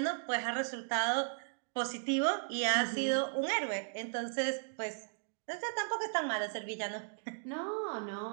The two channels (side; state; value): left; silent; digital silence